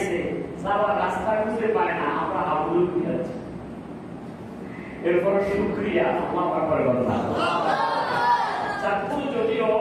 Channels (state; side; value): identical; both; correlation 1.00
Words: যাওয়ার রাস্তা খুঁজে পায় না, আমরা হাবুল ফিরেছি। এরপরে শুকরিয়া আল্লাহ পাকের কথা। চাঁদপুর যদিও